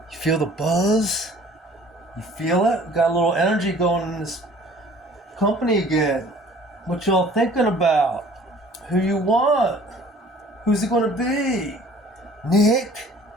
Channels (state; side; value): normal; both; correlation 0.51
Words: You feel the buzz? You feel it? Got a little energy going in this company again. What y'all thinking about? Who you want? Who's it gonna be? Nick?